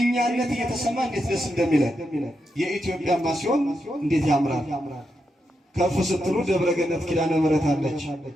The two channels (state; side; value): normal; both; correlation 0.85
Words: እየተሰማ እንዴት ደስ እንደሚለን የኢትዮጵያማ ሲሆን እንዴት ያምራል። ከፍ ስትሉ ደብረ ገነት ኪዳነ ምሕረት አለች።